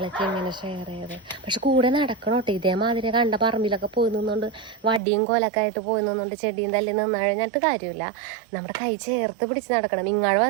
ഇങ്ങനെ ഷെയർ ചെയ്ത്, പക്ഷെ കൂടെ നടക്കണം കേട്ടോ. ഇതേമാതിരി കണ്ട പറമ്പിലൊക്കെ പോയി നിന്നുകൊണ്ട് വടിയും കോലൊക്കെ ആയിട്ട് പോയി നിന്നുകൊണ്ട് ചെടിയും തല്ലി നിന്ന് കഴിഞ്ഞിട്ട് കാര്യമില്ല. നമ്മുടെ കൈ ചേർത്ത് പിടിച്ച് നടക്കണം. ഇങ്ങോട്ട്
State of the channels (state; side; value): drops out; left; at 5.0 s